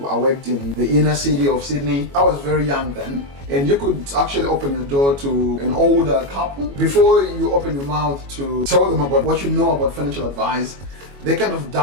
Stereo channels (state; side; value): late; left; 21 ms